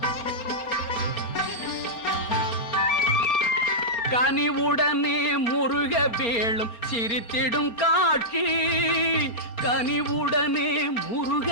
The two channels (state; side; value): late; right; 4.3 ms